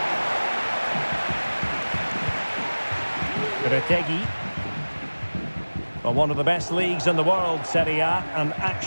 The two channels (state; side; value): inverted; both; correlation -1.00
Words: Retegi. Well, one of the best leagues in the world, Serie A, and